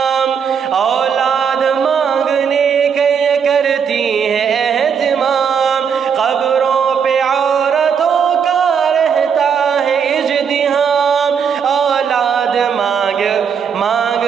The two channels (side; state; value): left; quieter; 7.0 dB